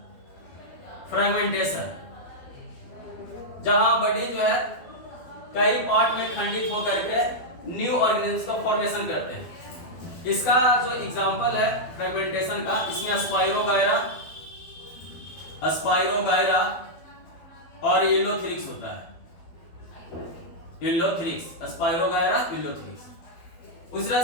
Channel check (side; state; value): right; late; 12 ms